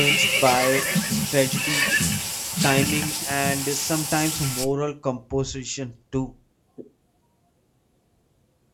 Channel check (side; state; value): both; identical; correlation 1.00